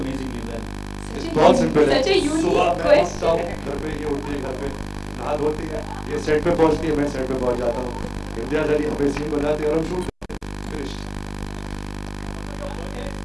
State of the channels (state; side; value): identical; both; correlation 1.00